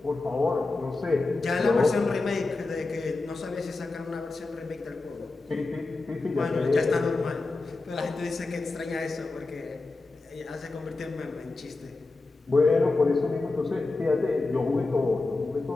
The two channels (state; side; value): quieter; right; 3.4 dB